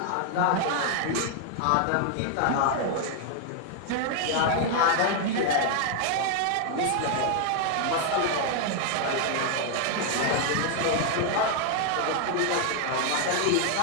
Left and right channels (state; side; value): different; both; correlation 0.00